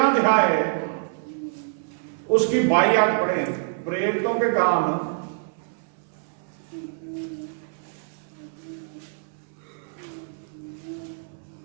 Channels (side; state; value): left; silent; 61 dB below the other